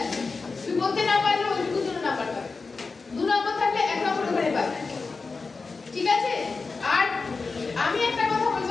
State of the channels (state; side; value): quieter; right; 4.3 dB